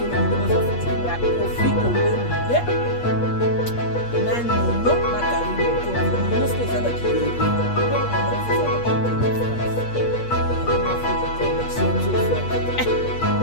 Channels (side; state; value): right; late; 8.4 ms